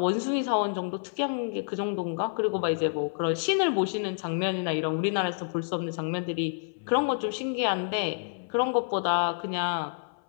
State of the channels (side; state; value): right; silent; 56 dB below the other